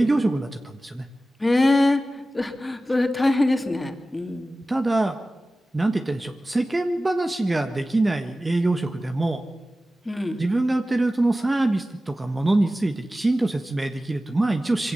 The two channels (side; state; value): both; normal; correlation 0.95